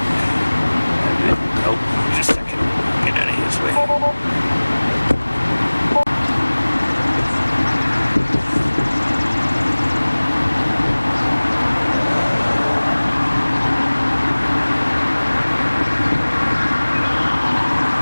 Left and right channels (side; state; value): both; inverted; correlation -1.00